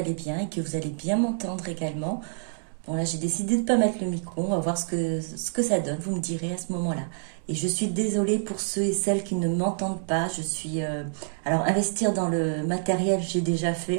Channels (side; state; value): left; silent; digital silence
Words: bien et que vous allez bien m'entendre également. Bon là j'ai décidé de ne pas mettre le micro, on va voir ce que ça donne, vous me direz à ce moment-là. Et je suis désolée pour ceux et celles qui ne m'entendent pas. Alors investir dans le matériel j'ai déjà